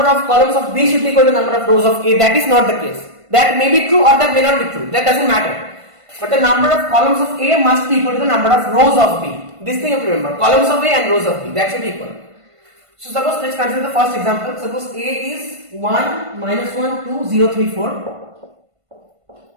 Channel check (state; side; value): late; left; 1.5 ms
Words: of columns of B should be equal to number of rows of A. That is not the case. That may be true or that may not be true. That doesn't matter. But the number of columns of A must be equal to the number of rows of B. This thing you have to remember. Columns of A and rows of B. That should be equal. So suppose let's consider the first example. Suppose A is 1, minus 1, 2, 0, 3, 4.